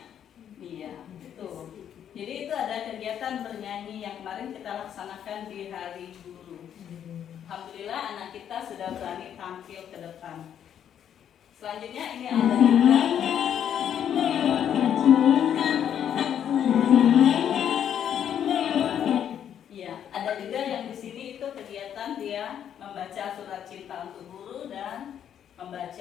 Jadi itu ada kegiatan bernyanyi yang kemarin kita laksanakan di Hari Guru. Alhamdulillah anak kita sudah berani tampil ke depan. Selanjutnya ini ada juga ya, ada juga yang di sini itu kegiatan dia membaca surat cinta untuk guru dan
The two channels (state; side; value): quieter; right; 9.4 dB